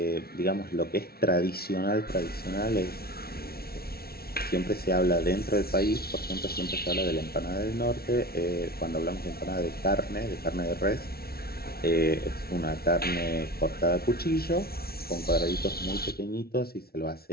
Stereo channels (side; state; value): right; late; 0.44 ms